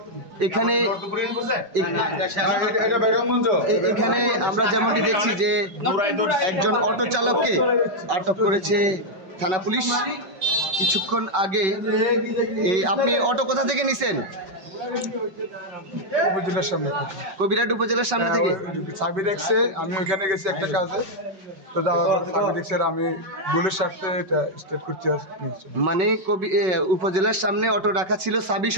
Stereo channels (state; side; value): late; left; 5.3 ms